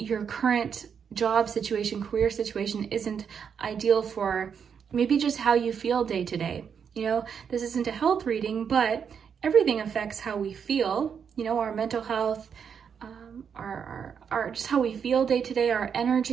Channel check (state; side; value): quieter; left; 7.1 dB